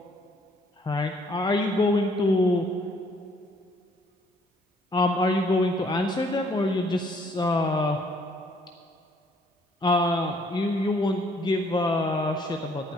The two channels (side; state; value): both; normal; correlation 0.64